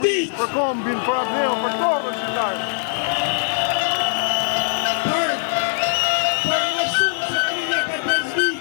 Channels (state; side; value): silent; right; digital silence